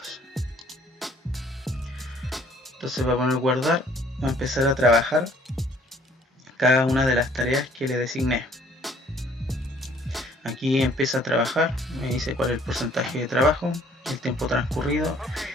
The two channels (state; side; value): normal; both; correlation 0.59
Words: Entonces va a poner guardar, va a empezar a trabajar cada una de las tareas que le designé. Aquí empieza a trabajar, me dice cuál es el porcentaje de trabajo, el tiempo transcurrido